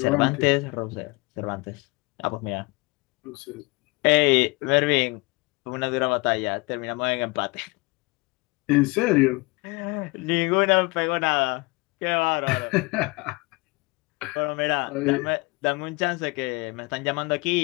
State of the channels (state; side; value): quieter; right; 25.9 dB